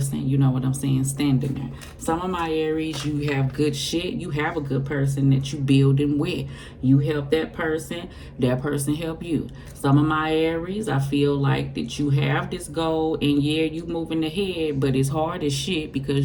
you know what I'm saying, standing there. Some of my Aries, you have good shit. You have a good person that you building with. You help that person help you. Some of my Aries, I feel like that you have this goal, and yeah, you moving ahead, but it's hard as shit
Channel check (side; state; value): both; identical; correlation 1.00